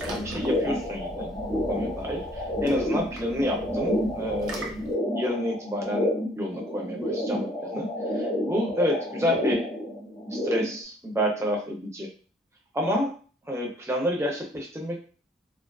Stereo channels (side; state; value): both; normal; correlation 0.59